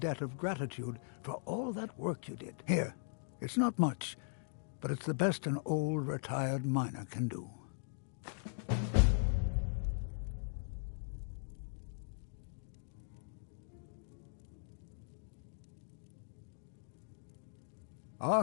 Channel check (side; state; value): right; silent; digital silence